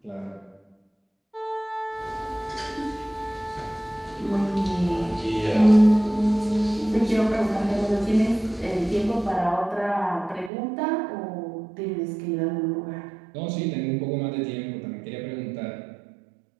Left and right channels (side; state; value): left; drops out; at 10.5 s